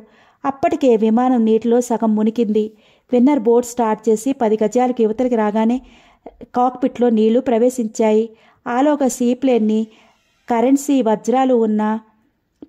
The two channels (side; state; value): both; identical; correlation 1.00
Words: అప్పటికే విమానం నీటిలో సగం మునికింది. విన్నర్ బోట్ స్టార్ట్ చేసి 10 గజాలకు యువతలకి రాగానే కాక్పిట్లో నీళ్లు ప్రవేశించాయి. ఆలోగా సీప్లేన్ని కరెన్సీ, వజ్రాలు ఉన్న